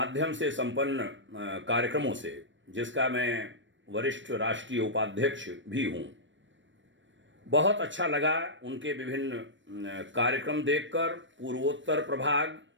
से संपन्न कार्यक्रमों से, जिसका मैं वरिष्ठ राष्ट्रीय उपाध्यक्ष भी हूं। बहुत अच्छा लगा उनके विभिन्न कार्यक्रम देखकर। पूर्वोत्तर प्रभाग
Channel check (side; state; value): left; late; 0.54 ms